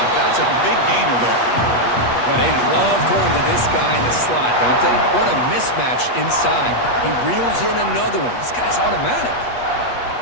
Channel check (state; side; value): late; right; 8.3 ms